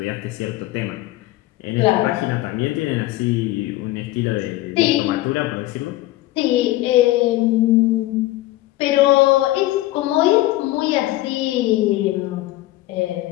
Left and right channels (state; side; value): quieter; right; 16.9 dB